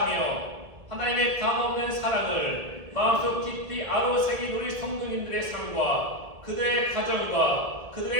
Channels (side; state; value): left; late; 1.8 ms